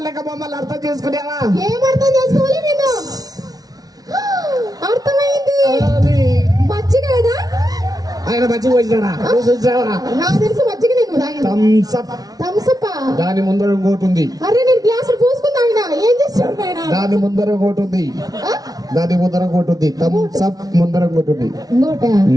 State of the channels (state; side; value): late; left; 0.18 ms